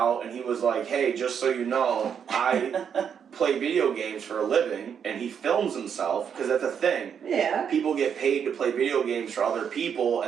and he was like, hey, just so you know, I play video games for a living, and he films himself, because that's a thing. Yeah. People get paid to play video games for other people,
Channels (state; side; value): quieter; left; 7.6 dB